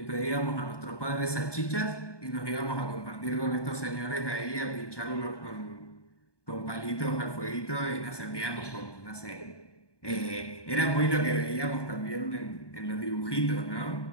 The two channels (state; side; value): late; right; 1.2 ms